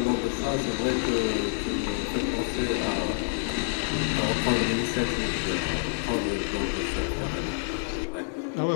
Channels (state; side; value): silent; right; 60 dB below the other